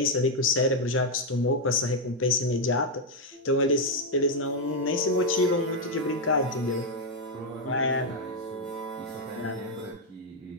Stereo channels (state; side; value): normal; both; correlation 0.01